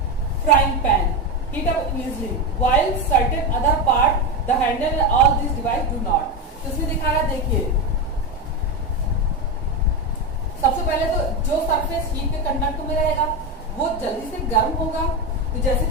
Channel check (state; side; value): normal; both; correlation 0.13